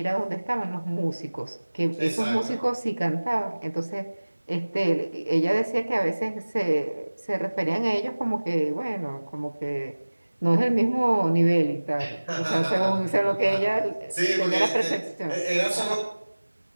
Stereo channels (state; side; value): inverted; both; correlation -1.00